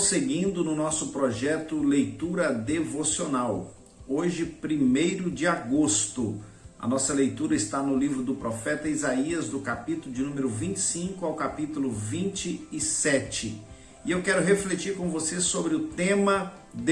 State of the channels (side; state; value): both; identical; correlation 1.00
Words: no nosso projeto Leitura Devocional. Hoje, 1º de agosto, a nossa leitura está no livro do profeta Isaías, do capítulo de número 25 ao capítulo 27. E eu quero refletir com você sobre o tema